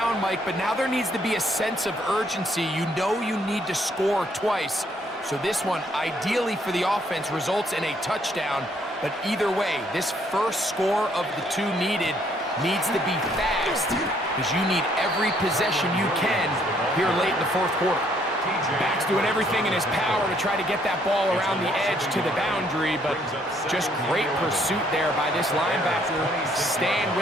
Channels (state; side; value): normal; both; correlation 0.67